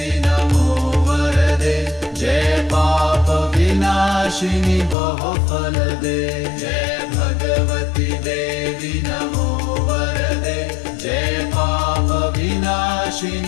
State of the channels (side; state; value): right; drops out; at 5.0 s